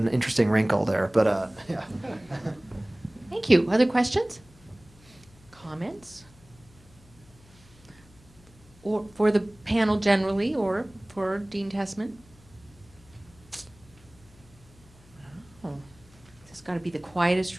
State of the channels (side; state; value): left; noise; hum, 26 dB below the sound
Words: interesting wrinkle there, but yeah. Thank you. Other questions? Comments? Or for the panel generally, or for Dean Tessman? Oh, this has got to be the quietest